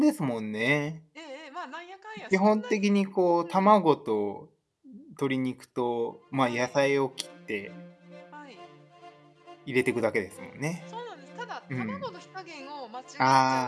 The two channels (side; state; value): both; identical; correlation 1.00